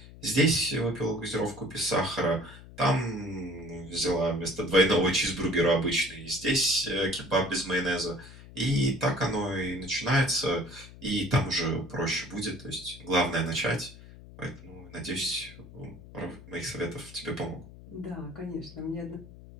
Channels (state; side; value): noise; left; hum, 18 dB below the sound